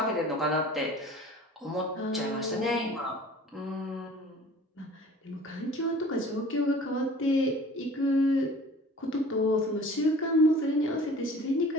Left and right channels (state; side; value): normal; both; correlation 0.46